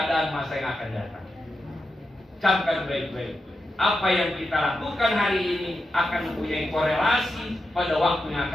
masa yang akan datang. Camkan baik-baik. Apa yang kita lakukan hari ini akan mempunyai korelasi pada waktu yang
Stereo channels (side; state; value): both; normal; correlation 0.88